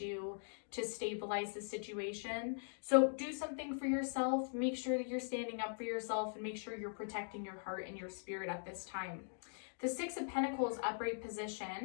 to stabilize the situation. So do something for yourself. Make sure that you're standing up for yourself, and make sure you're protecting your heart and your spirit at this time. The Six of Pentacles upright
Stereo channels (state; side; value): silent; right; digital silence